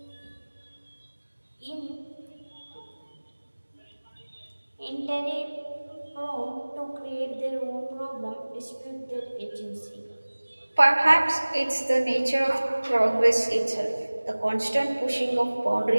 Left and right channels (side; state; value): both; inverted; correlation -1.00